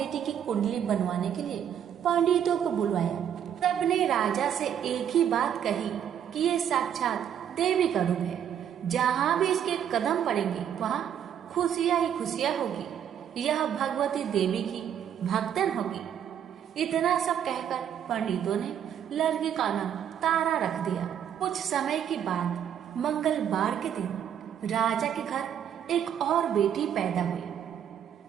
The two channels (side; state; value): left; quieter; 9.2 dB